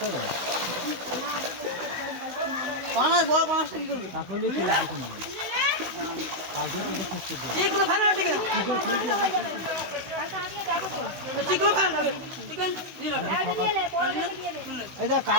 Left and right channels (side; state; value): left; late; 16 ms